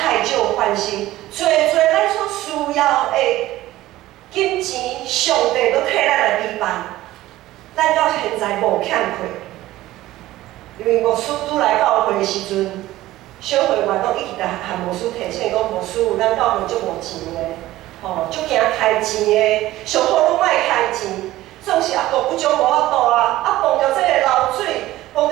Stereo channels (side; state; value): left; quieter; 16.1 dB